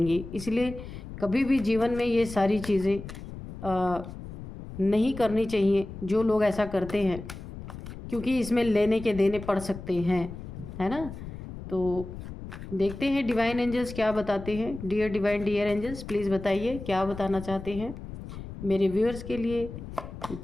इसलिए कभी भी जीवन में ये सारी चीज़ें नहीं करनी चाहिए जो लोग ऐसा करते हैं, क्योंकि इसमें लेने के देने पड़ सकते हैं, है ना। तो देखते हैं डिवाइन एंजल्स क्या बताते हैं। Dear divine, dear angels, please बताइए क्या बताना चाहते हैं मेरे व्यूअर्स के लिए।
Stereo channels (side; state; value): left; noise; rumble, 11 dB below the sound